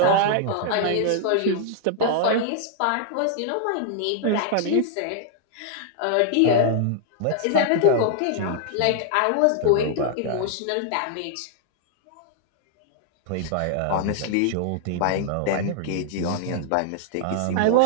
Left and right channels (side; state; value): both; different; correlation -0.01